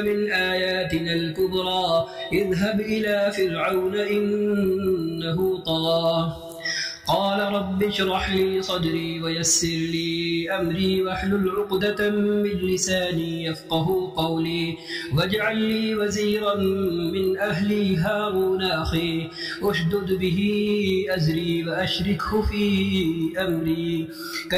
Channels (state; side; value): identical; both; correlation 1.00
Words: آياتنا الكبرى اذهب إلى فرعون إنه طغى قال رب اشرح لي صدري ويسر لي أمري واحلل عقدة من لساني يفقه قولي واجعل لي وزيرا من أهلي هارون أخي اشدد به أزري وأشركه في أمري